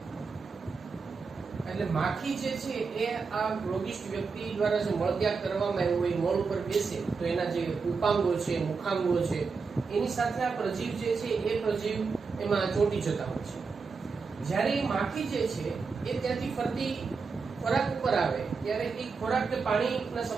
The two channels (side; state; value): left; quieter; 4.9 dB